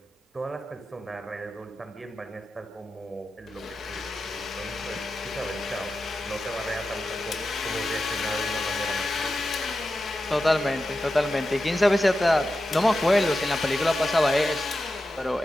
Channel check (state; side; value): normal; both; correlation 0.91